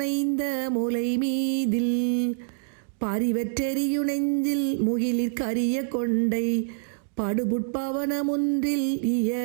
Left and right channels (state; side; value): silent; left; digital silence